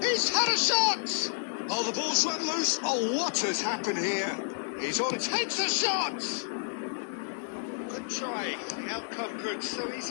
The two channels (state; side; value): silent; right; digital silence